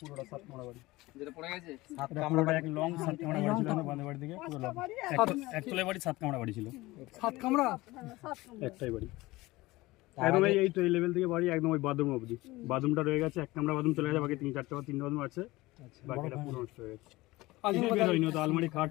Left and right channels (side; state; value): right; quieter; 19.9 dB